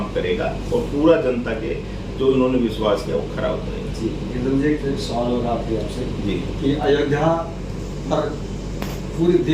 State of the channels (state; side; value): identical; both; correlation 1.00